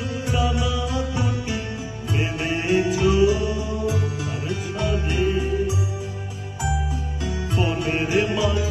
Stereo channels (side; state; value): both; identical; correlation 1.00